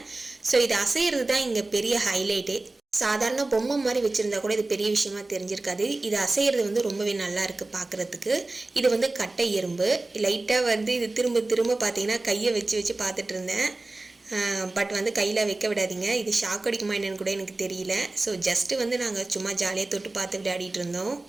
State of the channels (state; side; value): quieter; left; 3.1 dB